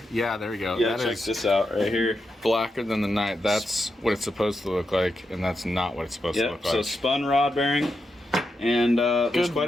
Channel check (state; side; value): normal; both; correlation 0.86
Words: there we go. Yeah, check this out right here. Blacker than the night. That's what it's supposed to look like, and that's not what it's supposed to look like. So spun rod bearing, and there's